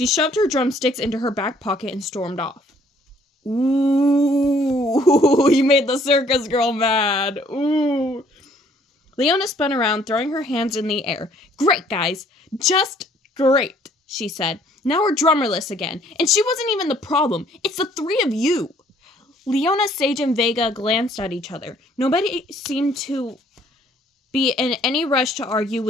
shoved her drumsticks into her back pocket and stormed off. Ooh, you made the circus girl mad. Ooh. Leona spun around, throwing her hands in the air. Great, guys. Just great, she said. Now we're drummerless again. And she wasn't even the problem. It's the three of you. Leona, Sage, and Vega glanced at each other. Nobody seemed to be in any rush to argue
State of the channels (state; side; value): normal; both; correlation 0.61